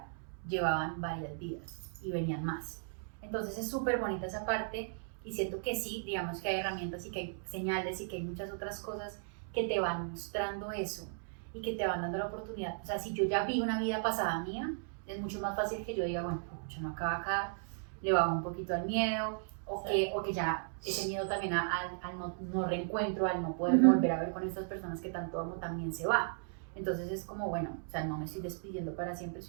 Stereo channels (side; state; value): left; silent; digital silence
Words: llevaban varias vidas y venían más. Entonces es súper bonita esa parte y siento que sí, digamos que hay herramientas y que hay señales y que hay muchas otras cosas que te van mostrando eso y que te van dando la oportunidad. O sea, si yo ya vi una vida pasada mía, es mucho más fácil que yo diga, bueno, yo no acaba acá, le bajo un poquito al miedo, o que ya ese miedo también al no reencuentro, al no poder volver a ver con estas personas que tanto amo, también se va. Entonces es como, bueno, o sea, no me estoy despidiendo para siempre,